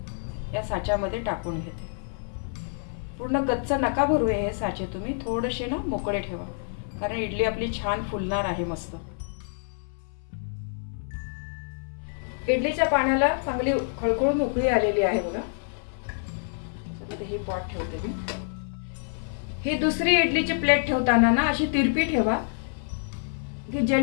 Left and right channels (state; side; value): silent; right; 60 dB below the other